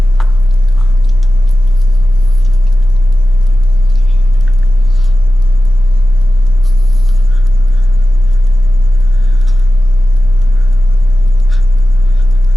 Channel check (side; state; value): right; noise; rumble, 23 dB below the sound